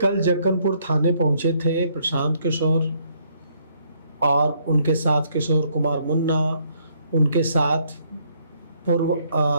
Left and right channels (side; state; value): both; inverted; correlation -0.69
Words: जक्कनपुर थाने पहुंचे थे प्रशांत किशोर और उनके साथ किशोर कुमार मुन्ना, उनके साथ पूर्व